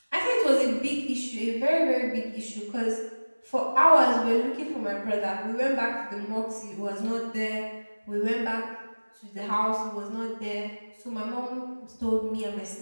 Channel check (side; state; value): both; inverted; correlation -1.00